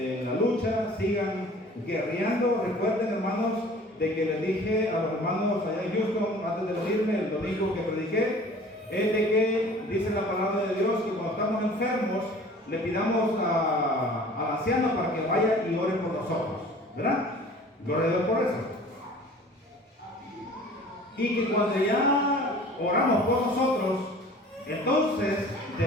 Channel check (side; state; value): both; normal; correlation 0.47